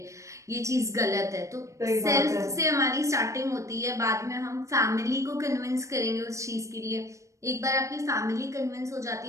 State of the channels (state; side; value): late; left; 0.15 ms